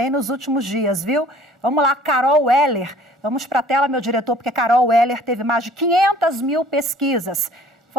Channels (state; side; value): normal; both; correlation 0.53